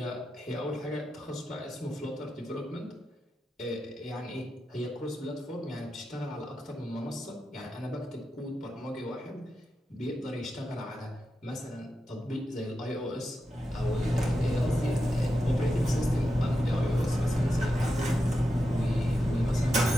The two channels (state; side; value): normal; both; correlation 0.89